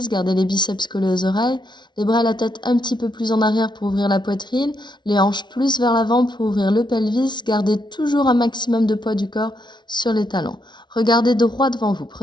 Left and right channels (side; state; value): right; late; 0.21 ms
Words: gardez les biceps collés aux oreilles, les bras et la tête un petit peu plus en arrière pour ouvrir la poitrine, les hanches plus vers l'avant pour ouvrir le pelvis, gardez toujours un maximum de poids du corps sur les talons. Regardez droit devant vous,